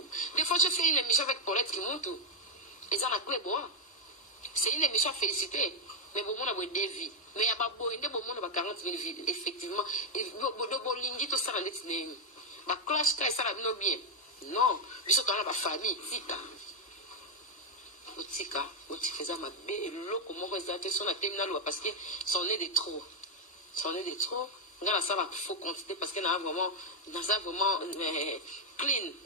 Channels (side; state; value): both; normal; correlation 0.03